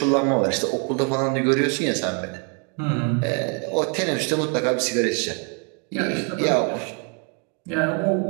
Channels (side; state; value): left; quieter; 38.3 dB